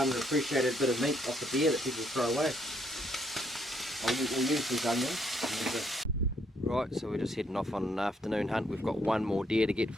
bit of meat off the deer that people throw away. We'll use these onions. Right, so we're just heading off on an afternoon hunt. We've got one more deer to get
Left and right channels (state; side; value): normal; both; correlation 0.71